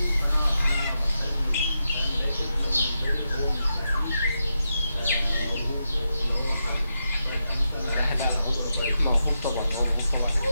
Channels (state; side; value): inverted; both; correlation -0.86